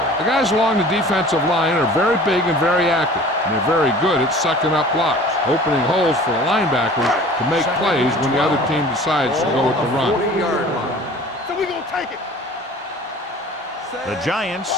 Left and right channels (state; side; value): normal; both; correlation 0.45